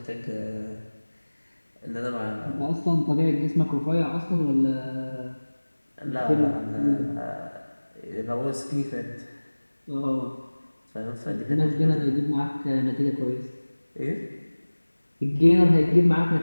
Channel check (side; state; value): both; inverted; correlation -1.00